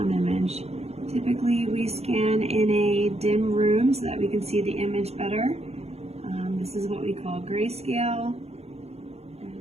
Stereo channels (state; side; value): late; left; 0.30 ms